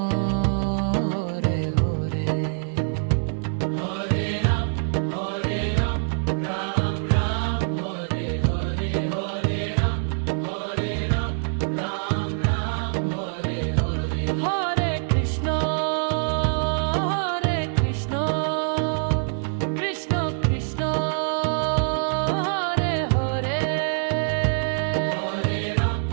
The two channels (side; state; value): left; silent; 62 dB below the other